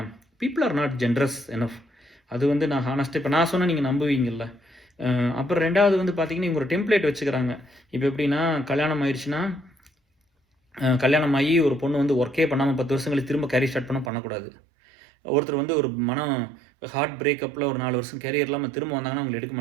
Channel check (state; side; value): drops out; left; at 14.1 s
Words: People are not generous enough. அது வந்து நான் ஹானஸ்ட்டாக இப்போ நான் சொன்னால் நீங்கள் நம்புவீங்கள்ல. அப்புறம் 2வது வந்து பார்த்தீங்கன்னா இவங்க ஒரு டெம்ப்ளேட் வச்சுக்கிறாங்க. இப்போ எப்படின்னா கல்யாணம் ஆயிடுச்சுன்னா, கல்யாணம் ஆகி ஒரு பொண்ணு வந்து ஒர்க்கே பண்ணாமல் 10 வருஷம் கழிச்சு திரும்ப கேரியர் ஸ்டார்ட் பண்ணக்கூடாது. ஒருத்தர் வந்து ஒரு ஹார்ட் பிரேக்கப்பில் ஒரு 4 வருஷம் கேரியர் இல்லாமல் திரும்ப வந்தாங்கன்னா அவங்க எடுக்க